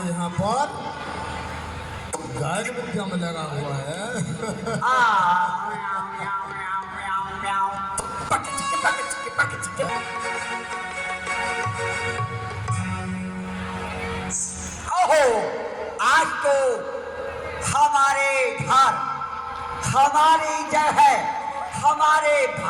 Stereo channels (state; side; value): identical; both; correlation 1.00